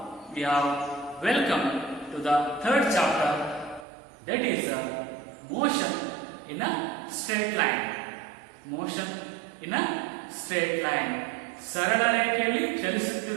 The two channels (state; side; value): drops out; left; at 3.9 s